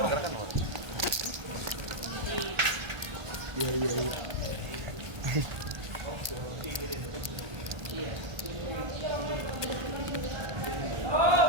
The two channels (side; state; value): left; late; 1.3 ms